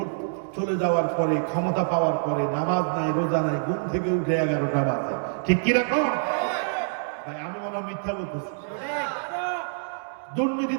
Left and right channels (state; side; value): silent; left; 61 dB below the other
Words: চলে যাওয়ার পরে, ক্ষমতা পাওয়ার পরে নামাজ নাই, রোজা নাই, ঘুম থেকে উঠে 11টা বাজে, ঠিক কিরকম? ভাই আমি মনে হয় মিথ্যা বলতেছি। দুর্নীতি